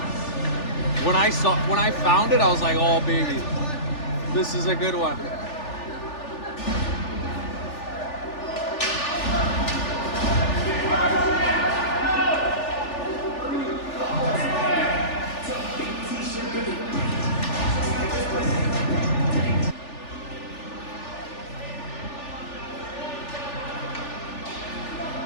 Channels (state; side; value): late; right; 3.4 ms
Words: When I found it, I was like, oh baby, this is a good one.